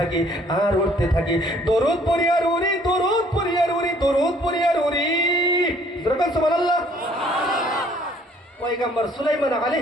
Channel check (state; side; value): normal; both; correlation 0.59